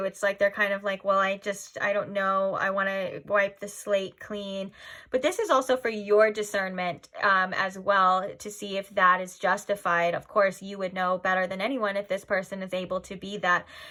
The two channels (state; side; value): identical; both; correlation 1.00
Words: It's like they're kind of like, well, I don't know, I want to wipe the slate clean. But this is also for your discernment as well, to see if that is justified. Of course, you would know better than anyone if this person is able to be that.